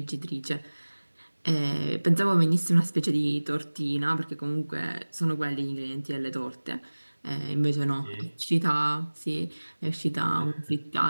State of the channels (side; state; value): both; inverted; correlation -1.00